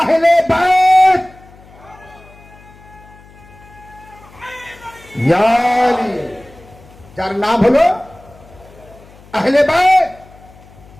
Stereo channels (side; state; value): left; noise; hum, 24 dB below the sound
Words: আহলে বাইত। যার নাম হলো আহলে বাইত।